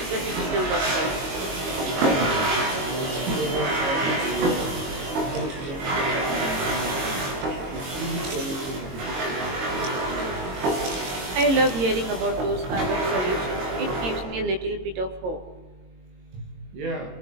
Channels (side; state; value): left; late; 22 ms